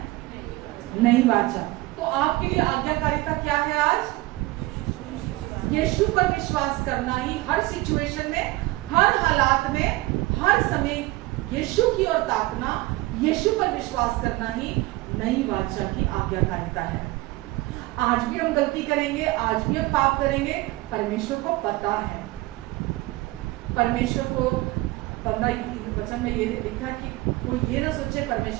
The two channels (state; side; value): quieter; left; 19.8 dB